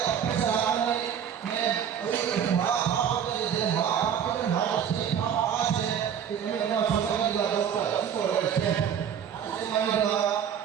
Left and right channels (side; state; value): left; quieter; 8.5 dB